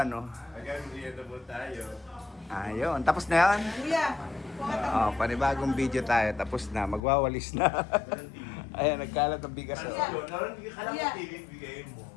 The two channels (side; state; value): right; drops out; at 7.0 s